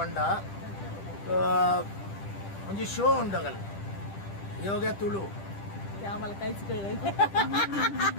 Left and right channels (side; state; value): right; late; 10 ms